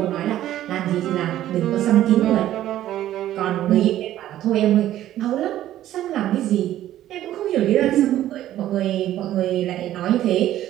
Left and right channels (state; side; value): quieter; left; 13.0 dB